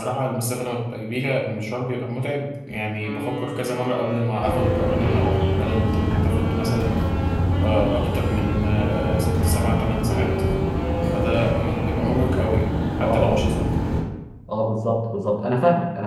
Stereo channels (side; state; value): both; identical; correlation 1.00